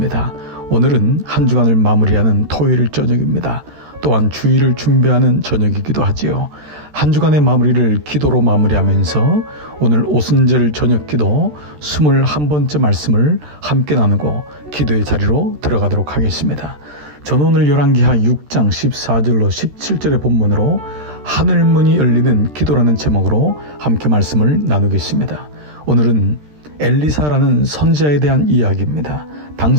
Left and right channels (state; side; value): late; left; 13 ms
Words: 오늘은 한 주간을 마무리하는 토요일 저녁입니다. 또한 주일을 준비하는 저녁이기도 하지요. 한 주간의 마무리를 기도로 마무리하면서 오늘 오순절 저녁 기도 21번째 말씀을 함께 나누고 기도의 자리로 들어가도록 하겠습니다. 저는 오늘 열왕기하 6장 14절로 17절의 본문으로 하늘문이 열리는 기도라는 제목으로 함께 말씀을 나누겠습니다. 오늘은 엘리사라는 선지자에 대한 이야기입니다.